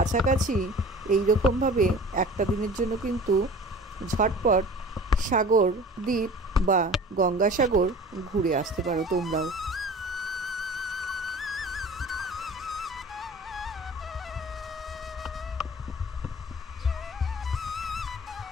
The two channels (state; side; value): normal; both; correlation 0.42